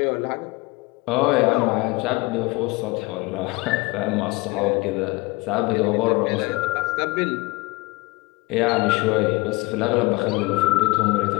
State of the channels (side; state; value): right; quieter; 23.3 dB